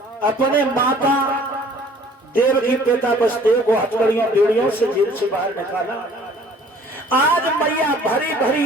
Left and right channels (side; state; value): both; normal; correlation 0.53